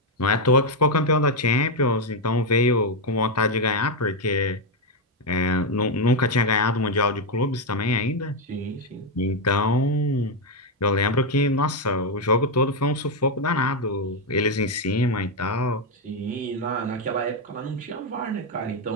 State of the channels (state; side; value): normal; both; correlation 0.03